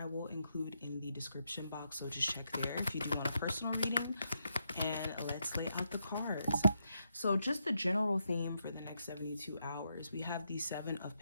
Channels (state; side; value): inverted; both; correlation -0.81